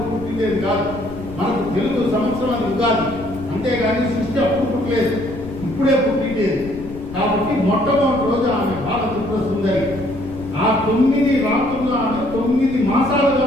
పుట్టిందేది కాదు. మనకు తెలుగు సంవత్సరం అది ఉగాది, అంతేగాని సృష్టి అప్పుడు పుట్టలేదు, ఇప్పుడే పుట్టిండేది. కాబట్టి మొట్టమొదటి రోజు ఆమె బాలపుత్ర సుందరి. ఆ 9 రాత్రులు ఆమె 9 మాసాలుగా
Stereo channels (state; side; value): noise; left; rumble, 14 dB below the sound